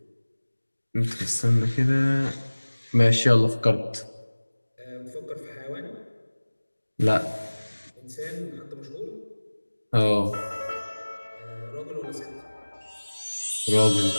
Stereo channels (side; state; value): both; inverted; correlation -1.00